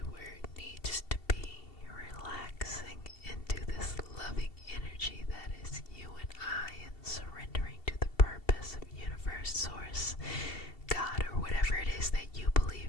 where it needs to be, relaxing into this loving energy that is you and I, and surrendering to the purpose of universe, source, God, or whatever it is that you believe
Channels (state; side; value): late; right; 2.7 ms